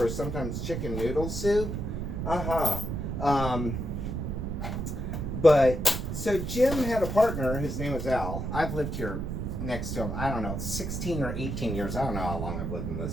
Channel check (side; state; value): right; noise; rumble, 3 dB below the sound